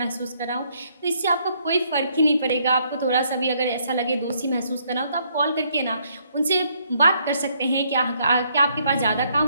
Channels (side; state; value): both; inverted; correlation -0.70